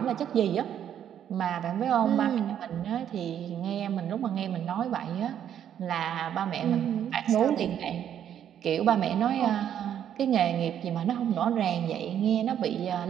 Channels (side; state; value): left; quieter; 9.7 dB